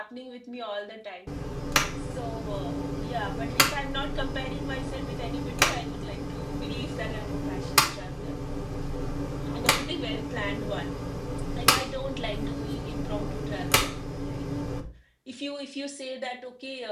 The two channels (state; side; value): identical; both; correlation 1.00